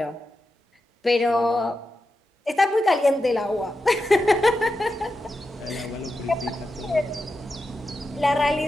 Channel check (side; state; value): both; normal; correlation 0.89